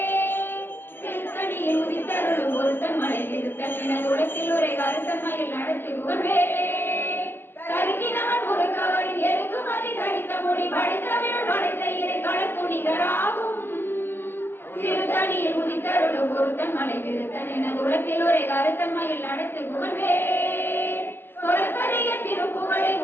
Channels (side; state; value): right; late; 0.10 ms